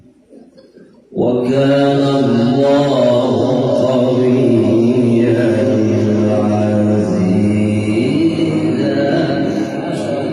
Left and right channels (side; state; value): both; identical; correlation 1.00